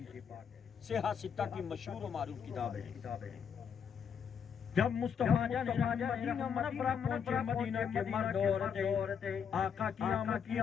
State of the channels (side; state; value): right; quieter; 7.2 dB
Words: پاک، صحیح ستہ کی مشہور و معروف کتاب ہے۔ جب مصطفیٰ جان مدینہ منورہ پہنچے، مدینہ کے مرد عورتیں آقا کی آمد کی